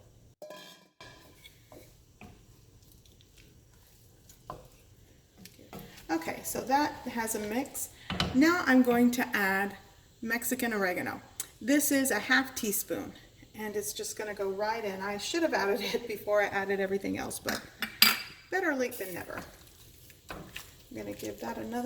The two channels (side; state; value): both; identical; correlation 1.00